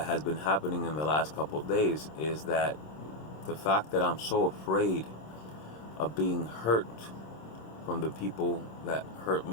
has been happening in the last couple of days is that the fact that I'm so afraid of being hurt from the people that hurt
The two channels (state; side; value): late; right; 26 ms